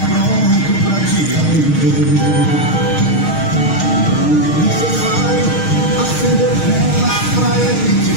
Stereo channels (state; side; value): late; right; 6.4 ms